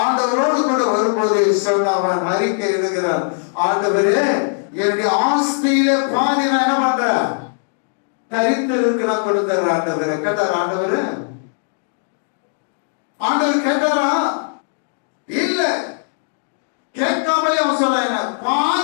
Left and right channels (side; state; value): right; silent; digital silence